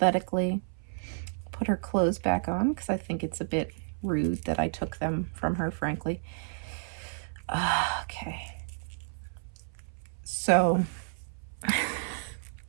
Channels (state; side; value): silent; left; 57 dB below the other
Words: Put her clothes back on because I think it's a bit rude that I took them from her, frankly. Okay. So